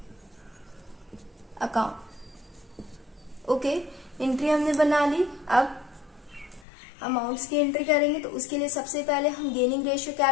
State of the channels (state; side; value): drops out; right; at 6.7 s